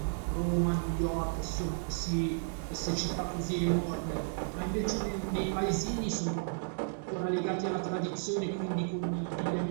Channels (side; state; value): left; silent; digital silence